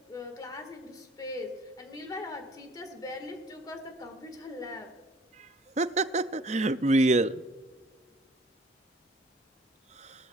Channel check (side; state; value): both; normal; correlation 0.55